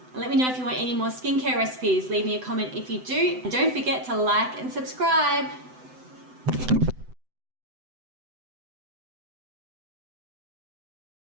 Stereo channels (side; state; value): left; late; 7.9 ms